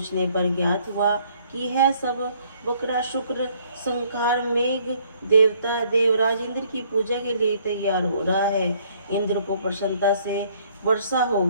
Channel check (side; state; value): both; inverted; correlation -0.63